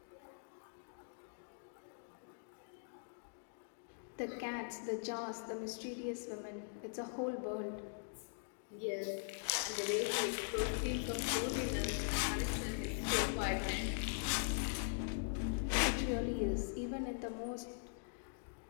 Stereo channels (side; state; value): right; silent; digital silence